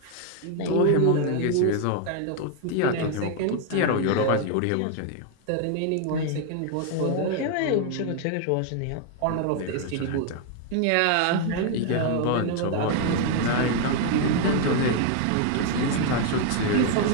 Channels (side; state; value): both; different; correlation 0.00